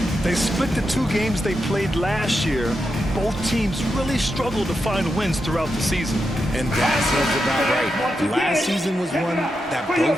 They split the 2 games they played last year. Both teams really struggled to find wins throughout the season. And that seems about right. Last season was one that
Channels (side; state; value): both; normal; correlation 0.87